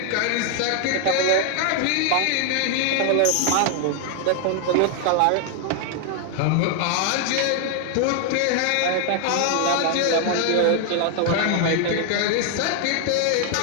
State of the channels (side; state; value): both; different; correlation 0.00